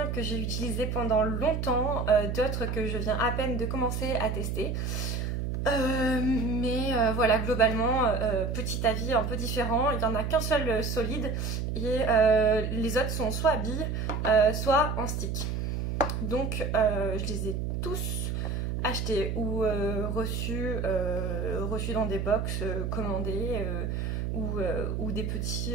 que j'ai utilisés pendant longtemps, d'autres que je viens à peine de commencer à tester. Mais voilà, globalement, petit avis un peu différent. Il n'y en a qu'un seul solide et les autres sont soit à billes, soit en stick. Donc je les ai tous achetés ou reçus dans des box commandés ou des petits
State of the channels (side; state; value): right; noise; hum, 2 dB below the sound